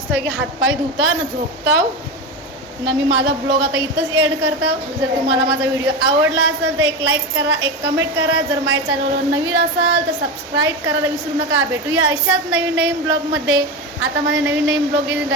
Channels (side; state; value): both; normal; correlation 0.19